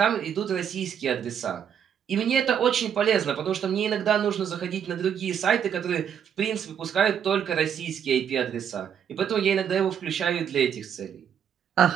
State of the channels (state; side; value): quieter; left; 8.4 dB